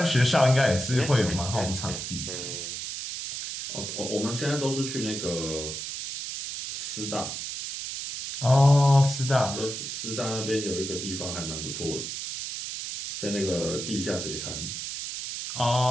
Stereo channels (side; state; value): right; noise; hiss, 6 dB below the sound